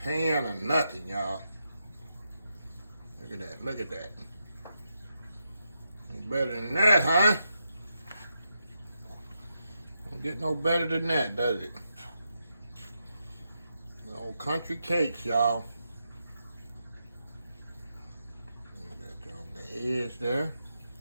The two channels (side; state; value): both; inverted; correlation -0.84